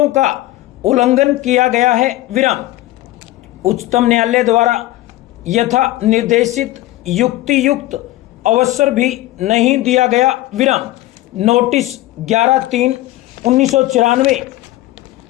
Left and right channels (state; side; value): quieter; right; 16.6 dB